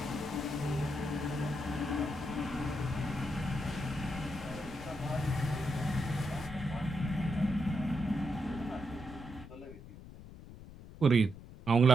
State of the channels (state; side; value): noise; left; rumble, 16 dB below the sound